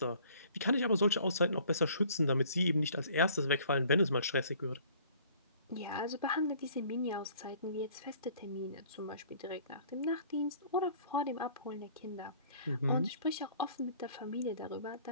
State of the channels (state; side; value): inverted; both; correlation -0.54